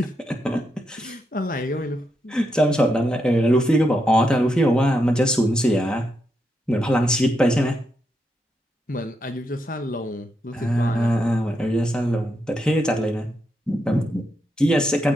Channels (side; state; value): both; normal; correlation 0.82